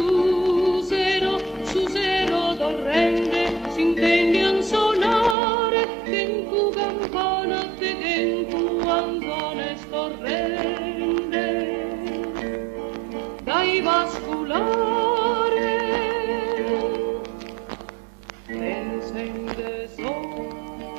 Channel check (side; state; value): left; drops out; at 5.4 s